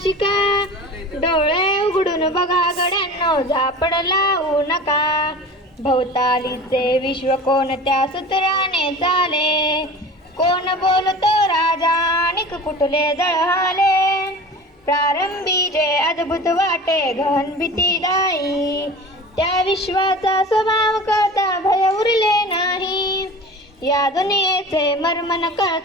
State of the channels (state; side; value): normal; both; correlation 0.37